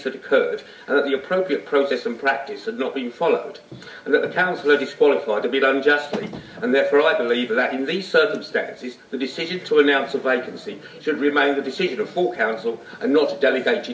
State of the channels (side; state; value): both; identical; correlation 1.00